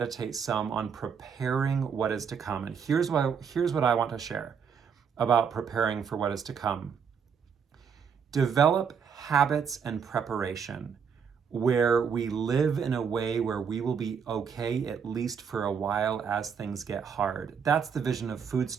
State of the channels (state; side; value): quieter; left; 6.7 dB